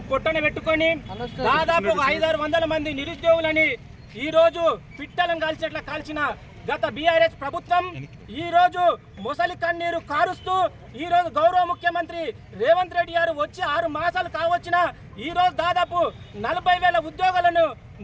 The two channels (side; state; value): both; identical; correlation 1.00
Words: పొట్టన పెట్టుకొని దాదాపు 500-600 మంది నిరుద్యోగులని ఈ రోజు పిట్టలను కాల్చేట్లా కాల్చిన గత బీఆర్ఎస్ ప్రభుత్వం ఈ రోజు మొసలి కన్నీరు కారుస్తూ ఈ రోజు గౌరవ ముఖ్యమంత్రి రేవంత్ రెడ్డి గారు వచ్చి 6 మాసాలు కావచ్చిన ఈ రోజు దాదాపు 40,000 ఉద్యోగాలను